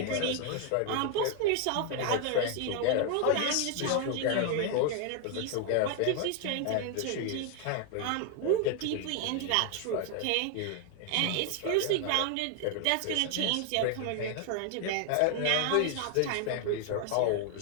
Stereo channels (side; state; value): both; different; correlation 0.01